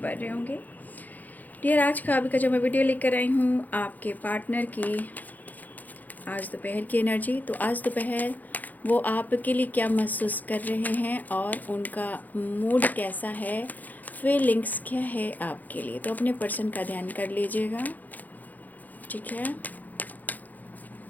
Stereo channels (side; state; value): right; late; 0.082 ms